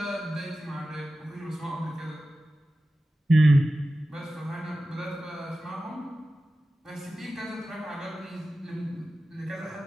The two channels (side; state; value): both; normal; correlation 0.94